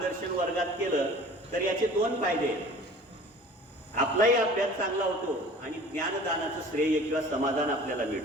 वर्गात केलं तर याचे दोन फायदे आहेत. आपलाही अभ्यास चांगला होतो आणि ज्ञानदानाचं श्रेय किंवा समाधान आपल्याला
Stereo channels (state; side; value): normal; both; correlation 0.45